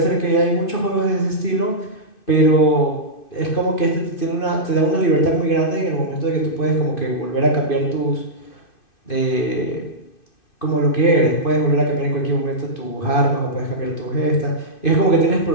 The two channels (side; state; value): right; late; 2.6 ms